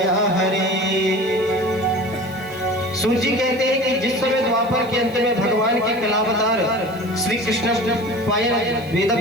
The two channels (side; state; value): right; noise; hiss, 25 dB below the sound